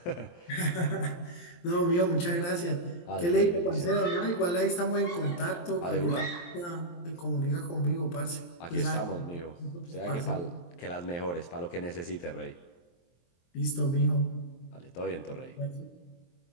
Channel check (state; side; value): late; right; 23 ms